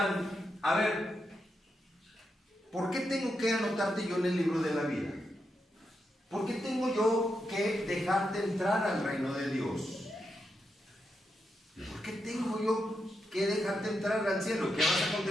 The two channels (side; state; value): both; normal; correlation 0.85